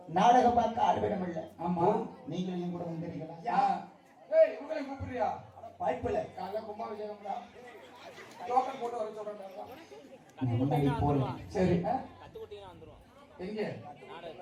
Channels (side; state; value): both; identical; correlation 1.00